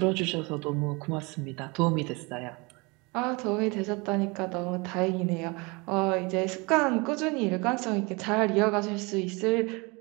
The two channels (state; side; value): quieter; left; 27.3 dB